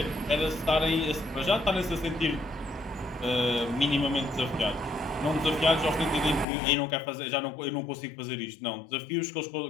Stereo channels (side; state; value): right; drops out; at 6.5 s